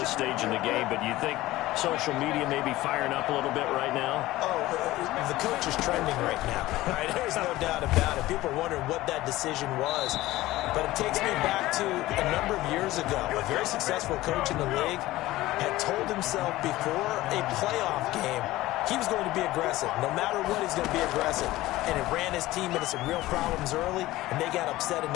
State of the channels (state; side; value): quieter; right; 17.2 dB